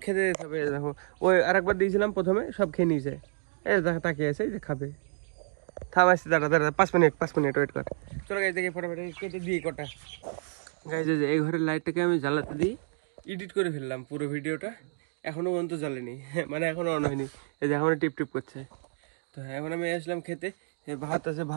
খেতে দিতে হবে। দেখো ওই আরেকবার দিয়েছিলাম প্রথমে, সব খেয়ে নিয়েছে। এই দেখো তাকিয়ে আছে, এই যে খাবে। থামাইছি, দাঁড়া দাঁড়া 5 মিনিট ওয়েট কর। চলো গাইজ দেখি ফটাফট কেটে দিই কটা। গাইজ এই ঘরের লাইটটাকে আমি জ্বালাতে দিই, এডিট করে ফেললাম পুরো ভিডিওটা, এখনো পর্যন্ত জ্বালেনি, মানে এখনো অন হয়নি। এই যে এখনো টিপ টিপ করছে। তো হ্যাঁ এখন আমি আসলাম খেতে, ভাত আছে,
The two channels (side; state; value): left; silent; digital silence